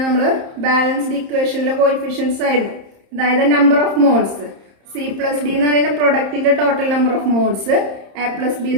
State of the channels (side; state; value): left; late; 30 ms